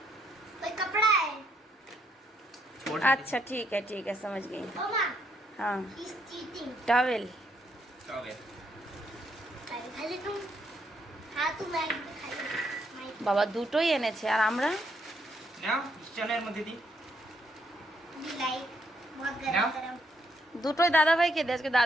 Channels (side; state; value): both; normal; correlation 0.74